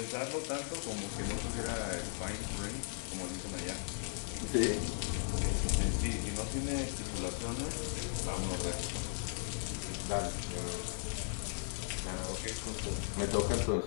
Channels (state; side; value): silent; right; 53 dB below the other